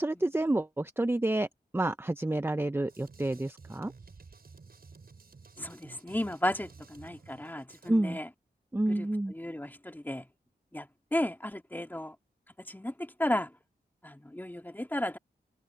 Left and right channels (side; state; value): both; normal; correlation 0.92